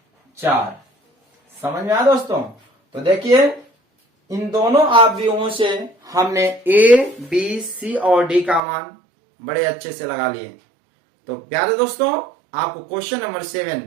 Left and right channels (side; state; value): left; drops out; at 8.6 s